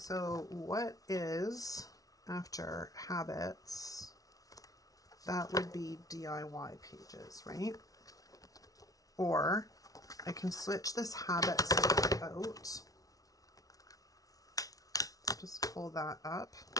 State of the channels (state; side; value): late; right; 0.18 ms